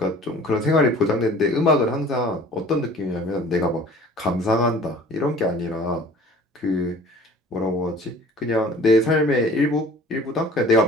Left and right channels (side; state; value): both; normal; correlation 0.47